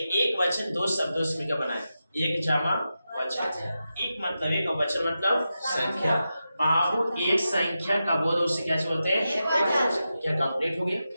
वचन दो शब्दों से मिलकर बना है, एक जमा वचन। एक मतलब एक और वचन मतलब संख्या। बाबू एक संख्या का बोध उसे क्या बोलते हैं? क्या कंप्लीट हो गया?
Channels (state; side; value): inverted; both; correlation -0.90